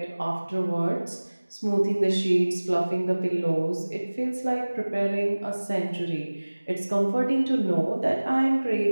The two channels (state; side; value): inverted; both; correlation -1.00